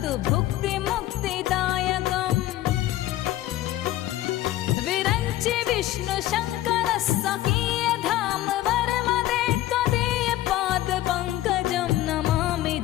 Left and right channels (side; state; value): right; quieter; 14.8 dB